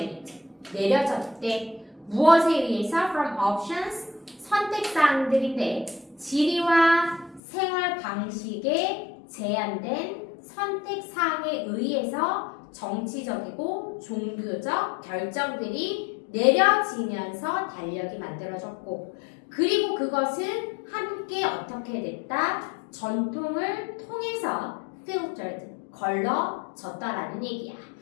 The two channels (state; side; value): drops out; right; at 7.4 s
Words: 내려졌대. 무엇에 의해서? From options 선택사항들인데 지리와 생활 방식에 제한된 선택사항에 의해서 정치적이고 종교적 결정들이 내려지면서 달력이 만들어졌고 그리고 그것은 함께 어떻게 됐다? 전통을 통해서 filtered, 걸러졌다라는 얘기야.